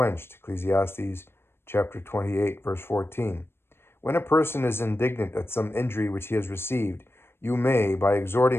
Ecclesiastes chapter 28, verse 14. When a person is indignant at some injury which he has received, you may, by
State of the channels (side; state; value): right; late; 0.12 ms